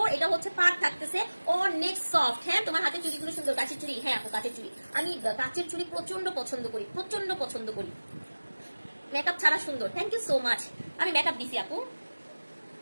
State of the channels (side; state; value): both; inverted; correlation -1.00